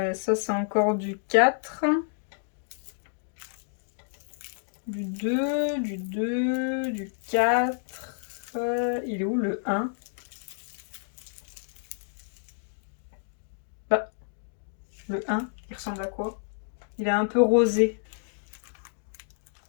Ça, c'est encore du 4. Du 2, du 2, du 4. Il est où le 1? Bah, le 1, il ressemble à quoi? Il est un peu rosé.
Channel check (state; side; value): silent; right; digital silence